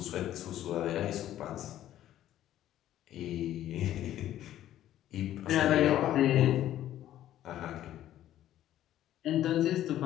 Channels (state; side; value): quieter; right; 12.6 dB